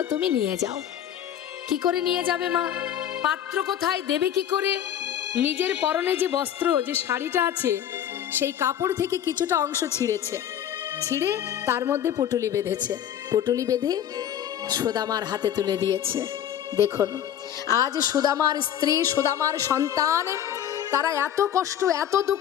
তুমি নিয়ে যাও। কি করে নিয়ে যাবে মা? পাত্র কোথায়, দেবে কি করে? নিজের পরনে যে বস্ত্র, যে শাড়িটা আছে, সেই কাপড় থেকে কিছুটা অংশ ছিঁড়েছে, ছিঁড়ে তার মধ্যে পুটুলি বেঁধেছে, পুটুলি বেঁধে সুদামার হাতে তুলে দিয়েছে। দেখুন আজ সুদামার স্ত্রী, সুদামার সন্তান, তারা এত কষ্ট, এত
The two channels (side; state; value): right; quieter; 10.2 dB